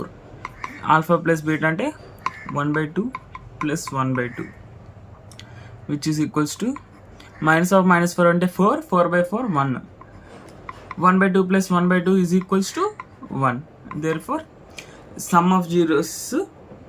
Alpha plus beta అంటే 1 by 2 plus 1 by 2, which is equals to minus of minus 4 అంటే 4 by 4 1. 1 by 2 plus 1 by 2 is equals to 1. Therefore, sum of zeros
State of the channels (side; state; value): both; identical; correlation 1.00